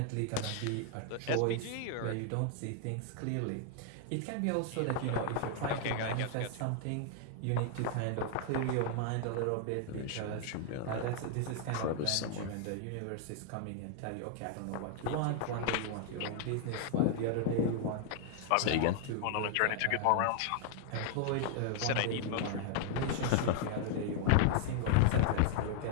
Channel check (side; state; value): both; different; correlation 0.00